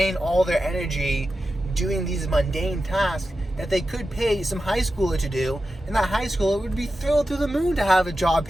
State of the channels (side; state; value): both; normal; correlation 0.91